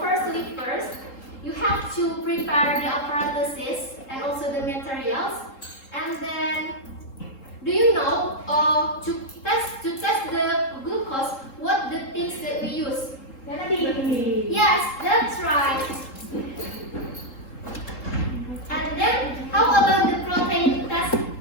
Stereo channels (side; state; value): right; late; 3.8 ms